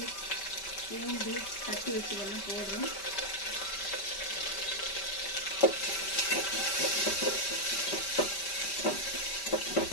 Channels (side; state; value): right; late; 5.1 ms